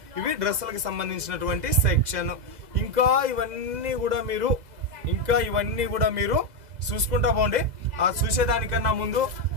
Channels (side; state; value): left; late; 2.0 ms